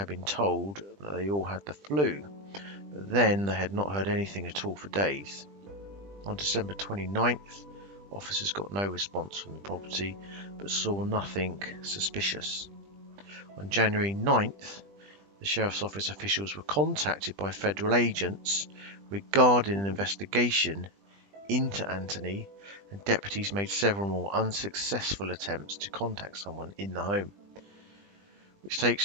been told that they all had the flu, but then they had not heard anything at all for days. On December 29th, officers got no response from the property, but saw nothing suspicious. On January 9th, the Sheriff's Office officials were contacted by federal agents regarding an investigation into Anthony, and deputies made several more unsuccessful attempts to contact someone in the home. Which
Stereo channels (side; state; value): left; late; 20 ms